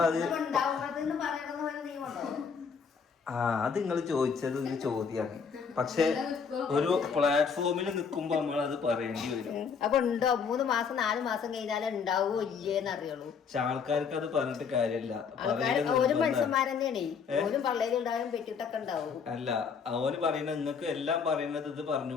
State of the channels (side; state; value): right; quieter; 6.1 dB